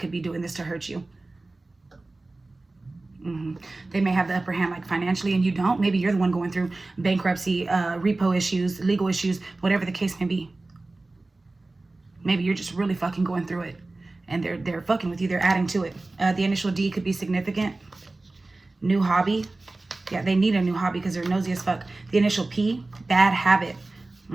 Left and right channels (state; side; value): quieter; left; 3.1 dB